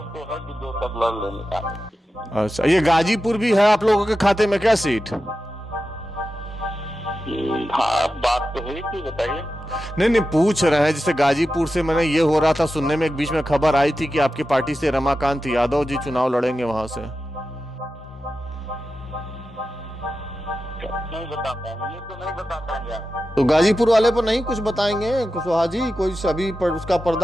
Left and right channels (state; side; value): normal; both; correlation 0.92